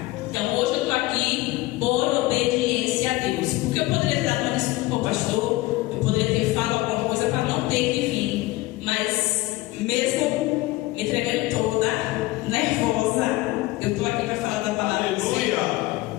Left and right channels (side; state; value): right; quieter; 19.7 dB